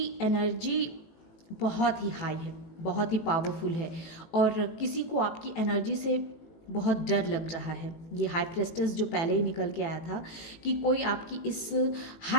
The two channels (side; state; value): right; late; 18 ms